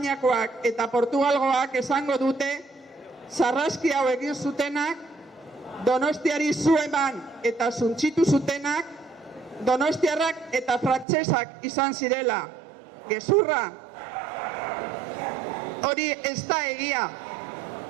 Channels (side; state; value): left; drops out; at 11.1 s